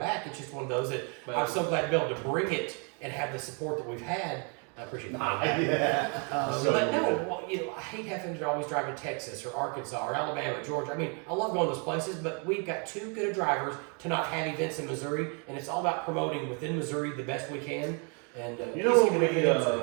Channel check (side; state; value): left; quieter; 36.6 dB